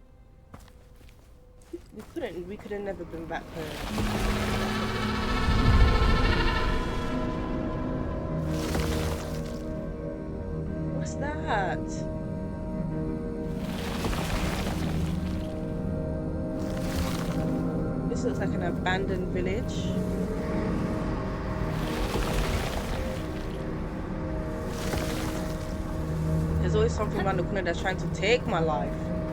We could have never been back home. What's that? This looks like an abandoned village. There's always something around the corner that's trying to take my life.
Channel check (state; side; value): identical; both; correlation 1.00